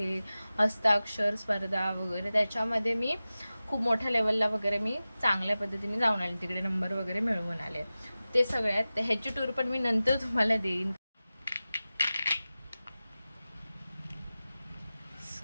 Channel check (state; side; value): inverted; both; correlation -0.96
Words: हस्ताक्षर स्पर्धा वगैरे त्याच्यामध्ये मी खूप मोठ्या लेवलला वगैरे मी चांगल्या पद्धतीने जाऊन आले, तिकडे नंबर वगैरे मिळवून आले. ते सगळ्यात ह्याची टूर पण मी नंतर तुम्हाला देईन.